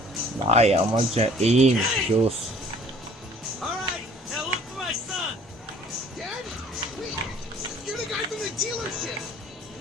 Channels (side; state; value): both; normal; correlation 0.54